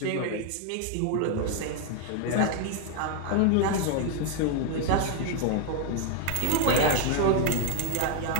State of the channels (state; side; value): different; both; correlation 0.00